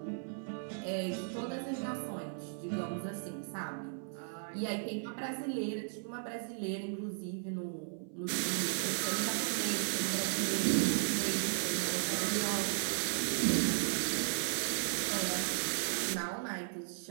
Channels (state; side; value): silent; left; 54 dB below the other